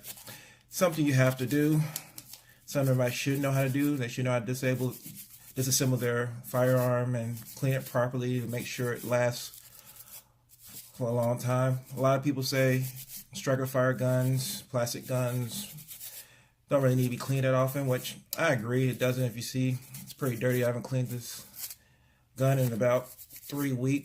something you have to do, something everybody should know how to do. They should know how to disassemble their firearm and clean it properly to make sure it lasts for a long time. A lot of people say striker fire guns, plastic guns, don't really need to be cleaned that often, which I agree, it doesn't. If you see, it's pretty dirty. I haven't cleaned this gun in about 3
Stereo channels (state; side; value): identical; both; correlation 1.00